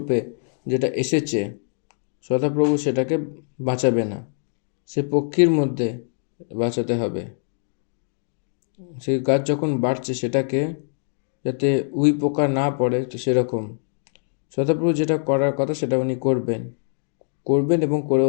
যেটা এসেছে, সদাপ্রভু সেটাকে বাঁচাবে না, সে পক্ষীর মধ্যে বাঁচাতে হবে, সেই গাছ যখন বাড়ছে সেটাকে যাতে উই পোকা না পড়ে, তো সেরকম সদাপ্রভু যেটা করার কথা সেটা উনি করবেন এবং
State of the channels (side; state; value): right; silent; digital silence